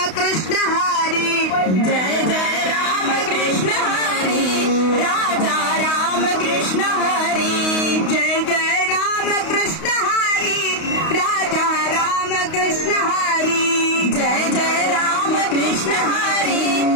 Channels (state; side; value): late; right; 32 ms